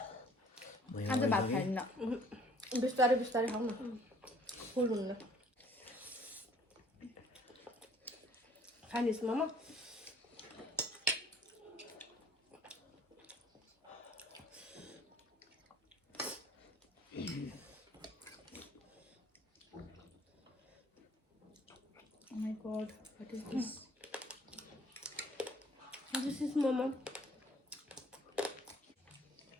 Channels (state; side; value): normal; both; correlation 0.57